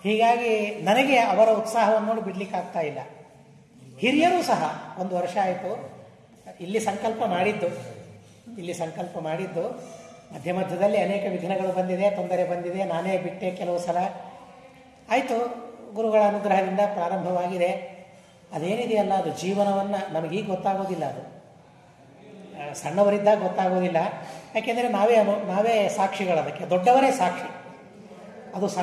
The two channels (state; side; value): identical; both; correlation 1.00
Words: ಹೀಗಾಗಿ ನನಗೆ ಅವರ ಉತ್ಸಾಹವನ್ನು ನೋಡಿ ಬಿಡ್ಲಿಕ್ಕಾಗ್ತಾ ಇಲ್ಲ. ಹಿರಿಯರೂ ಸಹ 1 ವರ್ಷ ಆಯಿತು ಇಲ್ಲಿ ಸಂಕಲ್ಪ ಮಾಡಿದ್ದು. ಮಧ್ಯ ಮಧ್ಯದಲ್ಲಿ ಅನೇಕ ವಿಘ್ನಗಳು ಬಂದಿದೆ, ತೊಂದರೆ ಬಂದಿದೆ, ನಾನೇ ಬಿಟ್ಟೆ ಕೆಲವು ಸಲ. ಆಯಿತು, ಗುರುಗಳ ಅನುಗ್ರಹದಿಂದ ಪ್ರಾರಂಭವಾಗಿದೆ. ಅದೇನಿದೆಯಲ್ಲ ಅದು ಜೀವನವನ್ನು ನಮಗೀಗ ಗೊತ್ತಾಗೋದಿಲ್ಲ. ಅದು ಸಣ್ಣವರಿದ್ದಾಗ ಗೊತ್ತಾಗೋದಿಲ್ಲ. ಯಾಕೆಂದರೆ ನಾವೇ ಸಾಕ್ಷಿಗಳದಕ್ಕೆ, ದೊಡ್ಡವರೇ ಸಾಕ್ಷಿ. ಅದು